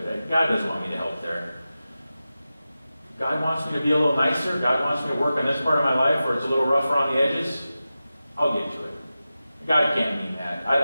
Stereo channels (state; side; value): inverted; both; correlation -0.94